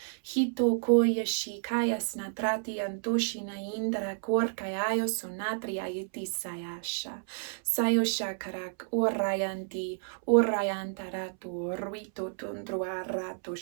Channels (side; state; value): left; silent; 57 dB below the other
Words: hito koyashi kaya snatrati antoshi naindra korkayayo sonatri ayiti sayasha sayosha karak orayanti orayantarato ruito tundro